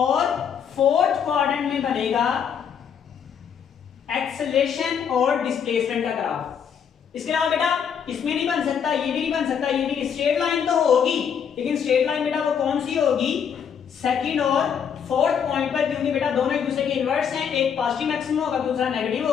फोर्थ क्वाड्रेंट में बनेगा एक्सेलरेशन और डिस्प्लेसमेंट का ग्राफ। इसके अलावा बेटा इसमें नहीं बन सकता, ये भी नहीं बन सकता, ये भी। स्ट्रेट लाइन तो होगी लेकिन स्ट्रेट लाइन बेटा वो कौन सी होगी, सेकंड और फोर्थ पॉइंट पर, क्योंकि बेटा दोनों एक दूसरे के इनवर्स हैं, एक पॉजिटिव मैक्सिमम होगा दूसरा नेगेटिव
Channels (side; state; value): right; quieter; 7.6 dB